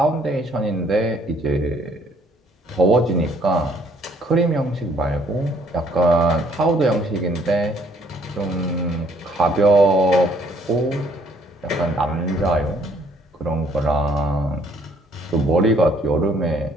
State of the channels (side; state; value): both; normal; correlation 0.63